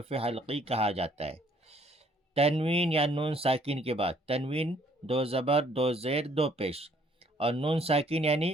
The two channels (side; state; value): both; normal; correlation 0.62